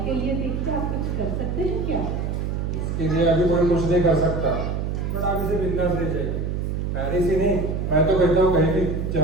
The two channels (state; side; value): noise; right; hum, 2 dB below the sound